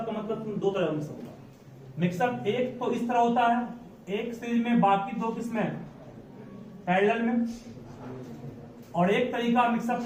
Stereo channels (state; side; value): identical; both; correlation 1.00